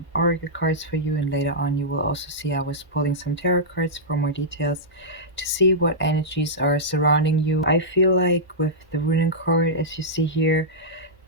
oracle cards for you, and later on you will also see I was pulling some tarot cards for more details to see what energies are surrounding you. I feel like with the runic card, as you see here,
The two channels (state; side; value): normal; both; correlation -0.11